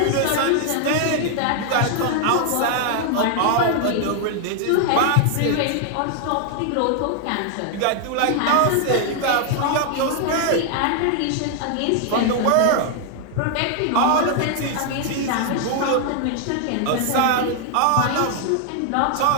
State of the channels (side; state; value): both; different; correlation 0.00